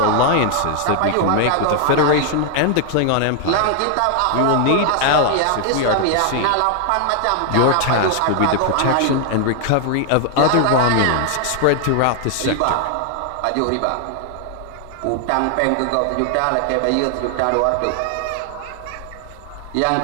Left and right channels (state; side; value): different; both; correlation 0.00